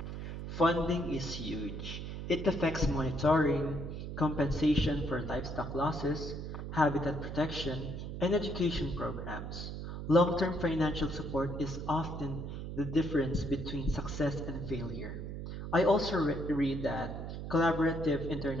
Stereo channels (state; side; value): noise; right; hum, 7 dB below the sound